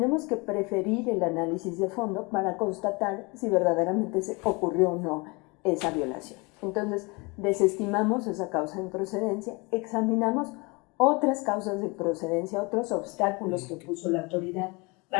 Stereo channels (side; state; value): right; quieter; 27.7 dB